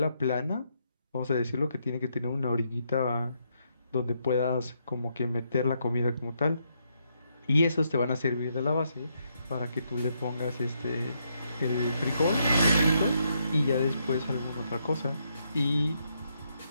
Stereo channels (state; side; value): inverted; both; correlation -0.77